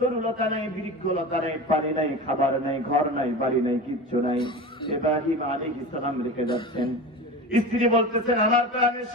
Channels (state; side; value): normal; both; correlation 0.30